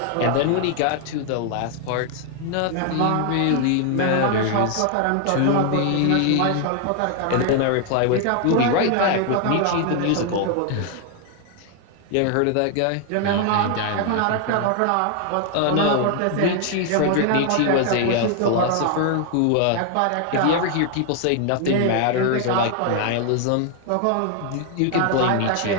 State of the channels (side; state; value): both; different; correlation 0.00